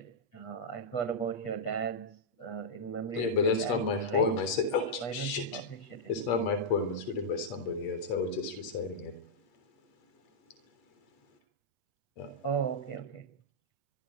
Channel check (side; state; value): right; late; 8.4 ms